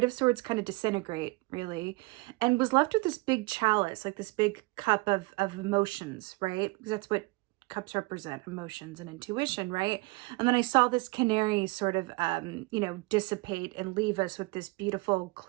of Swords kind of disintegrate, really, and was left with this big chalice, like this big cup of emotions, right? Because that's what cups represent, emotions and intuition, right? And then I saw this canary sort of, dissipate and leave us with this beautiful,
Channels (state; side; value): quieter; left; 25.0 dB